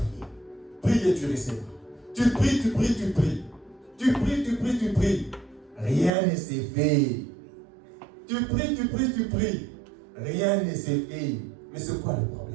Prie et tu recevras. Tu pries. Tu pries. Rien ne s'est fait. Tu pries. Rien ne s'est fait. Mais c'est quoi le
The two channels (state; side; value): drops out; left; at 6.1 s